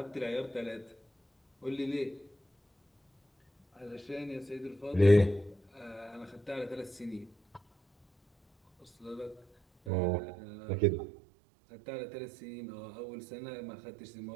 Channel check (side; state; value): left; drops out; at 9.9 s